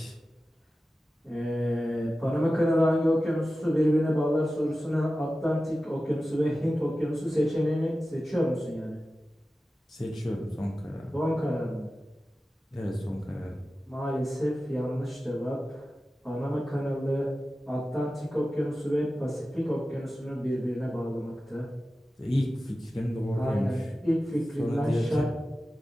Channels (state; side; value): normal; both; correlation 0.94